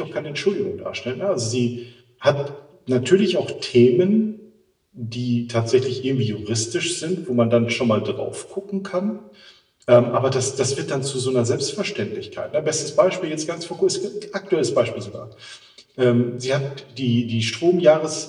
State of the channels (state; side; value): identical; both; correlation 1.00